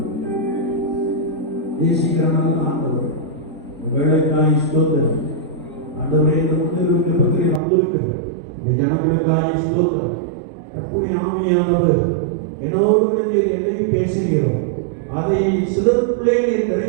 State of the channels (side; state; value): left; drops out; at 7.6 s